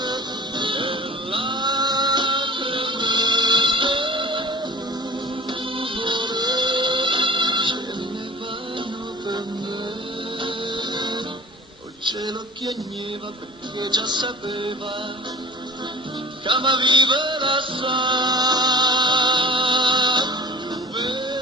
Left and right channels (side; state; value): both; normal; correlation 0.41